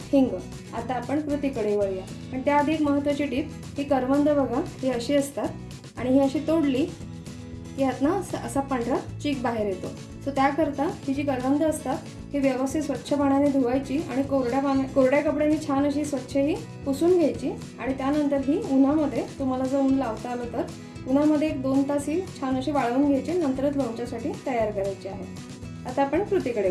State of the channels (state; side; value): identical; both; correlation 1.00